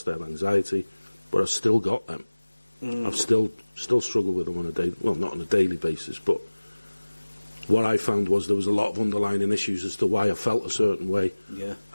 I had anxiety, but I still got them. I've still struggle with them on a day, well, not on a daily basis, but what I found was there was a lot of underlying issues as to why I felt a certain way,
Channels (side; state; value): both; inverted; correlation -1.00